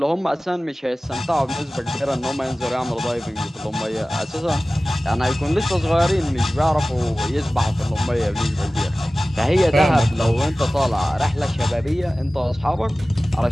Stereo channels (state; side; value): normal; both; correlation 0.97